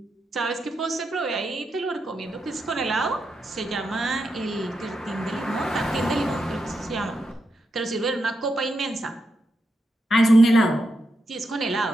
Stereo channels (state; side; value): normal; both; correlation 0.85